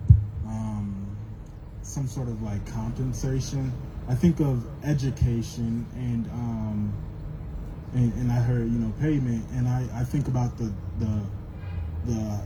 some sort of like compensation? I think of education and I heard payment, and I think about the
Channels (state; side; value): identical; both; correlation 1.00